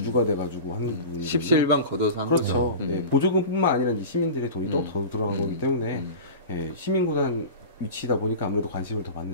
돼가지고 하는 부분이 십시일반 걷어서 한 그렇죠. 거죠. 예, 보조금뿐만 아니라 이제 시민들의 돈이 또 더 들어간 거기 때문에 예, 시민구단 위치다 보니까 아무래도 관심을 더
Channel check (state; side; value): inverted; both; correlation -0.32